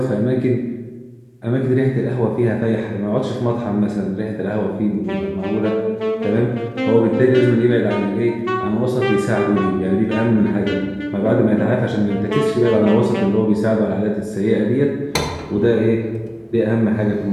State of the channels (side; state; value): both; identical; correlation 1.00